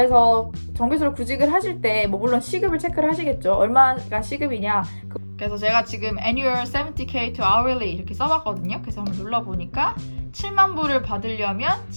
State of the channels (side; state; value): both; inverted; correlation -1.00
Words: 정규수로 구직을 하실 때 뭐 물론 시급을 체크를 하시겠죠. 얼마가 시급이냐. 그래서 제가 지금 annual 70k to hourly 이렇게 써봤거든요. 그래서 한번 눌러보니까 7만 불을 받으려면